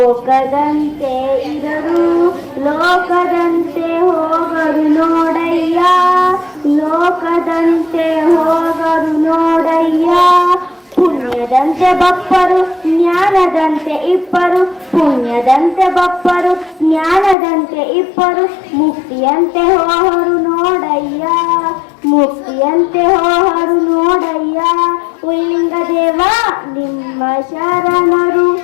ಇರರು, ಲೋಕದಂತೆ ಹೋಗರು ನೋಡಯ್ಯ, ಲೋಕದಂತೆ ಹೋಗರು ನೋಡಯ್ಯ. ಪುಣ್ಯದಂತೆ ಬಪ್ಪರು ಜ್ಞಾನದಂತೆ ಇಪ್ಪರು, ಪುಣ್ಯದಂತೆ ಬಪ್ಪರು ಜ್ಞಾನದಂತೆ ಇಪ್ಪರು, ಮುಕ್ತಿಯಂತೆ ಹೋಹರು ನೋಡಯ್ಯ, ಮುಕ್ತಿಯಂತೆ ಹೋಹರು ನೋಡಯ್ಯ. ಉಲ್ಲಿಂಗದೇವ ನಿಮ್ಮ ಶರಣರು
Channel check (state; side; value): drops out; right; at 17.4 s